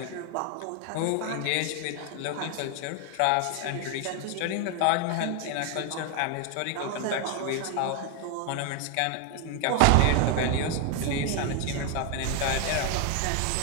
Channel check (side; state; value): both; different; correlation 0.01